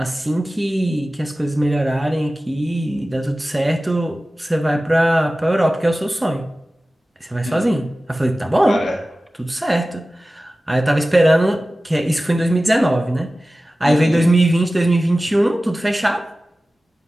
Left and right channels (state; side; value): normal; both; correlation 0.96